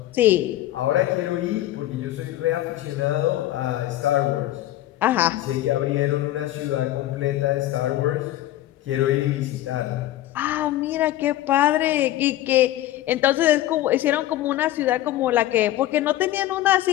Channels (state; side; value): quieter; right; 14.4 dB